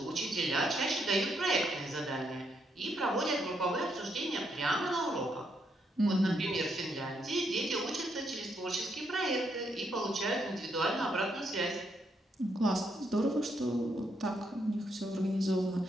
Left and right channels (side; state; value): both; normal; correlation 0.77